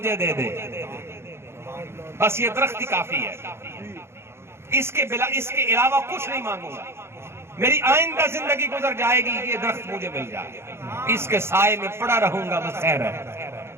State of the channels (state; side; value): late; left; 0.12 ms